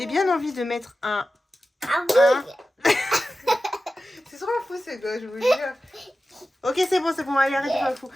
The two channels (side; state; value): both; normal; correlation 0.93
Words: bien envie de mettre un... Ah oui. C'est trop fou, ce gosse, je vous jure. Ok, c'est bon, allez, arrête de faire le fou.